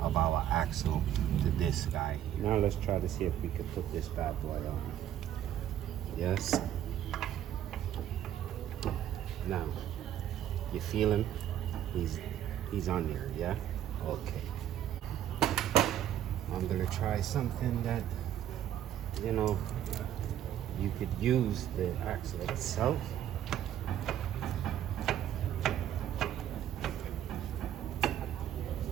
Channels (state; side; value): quieter; left; 11.2 dB